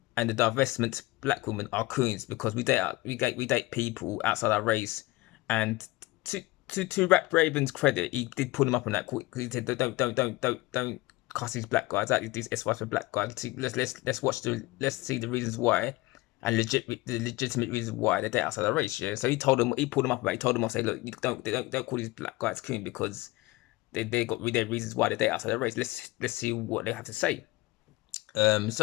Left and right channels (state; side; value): quieter; right; 20.2 dB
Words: and the divestment black women are coons because we date people outside our race. And to Rap Raven's credit, he did pull him up on that. He said, don't cuss these black guys out, these SYSBM black guys. Let's see the reasons why, and the legitimate reasons why they date outside their race. Yeah. So he pulled them up about it. He told them, I say, look, don't call these black guys coon, because they got their reasons why they date outside their race. Let's see what they have to say.